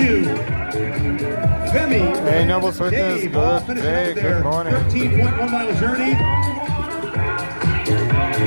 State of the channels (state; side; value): inverted; both; correlation -1.00